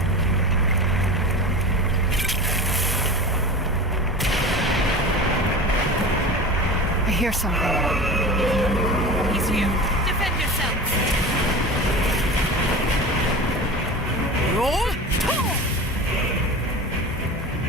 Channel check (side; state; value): both; normal; correlation 0.31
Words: I hear something. He's here. Defend yourselves. Roll!